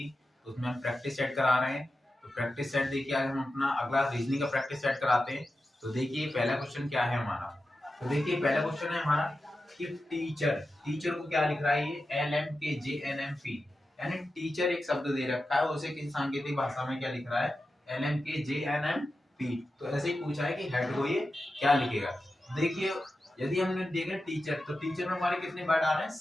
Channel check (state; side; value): normal; both; correlation 0.92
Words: तो उसमें हम प्रैक्टिस सेट करा रहे हैं। तो प्रैक्टिस सेट देखिए, आज हम अपना अगला रीजनिंग का प्रैक्टिस सेट कराते हैं। तो देखिए पहला क्वेश्चन क्या है हमारा। तो देखिए पहला क्वेश्चन है हमारा कि टीचर टीचर को क्या लिख रहा है, ये LMKJNMP, यानी टीचर एक शब्द दे रखा है, उसे किसी सांकेतिक भाषा में क्या लिख रहा है, LMKJNMP। तो ऐसे ही पूछा है कि हेड को ये क्या लिखेगा। देखिए यदि हमने देखा टीचर, तो टीचर में हमारे कितने वर्ड आ रहे हैं,